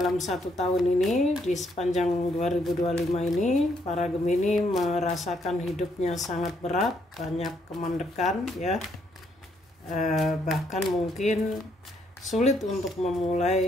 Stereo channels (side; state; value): both; normal; correlation 0.73